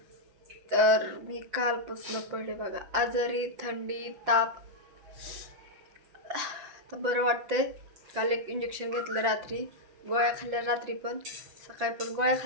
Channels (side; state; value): left; late; 6.0 ms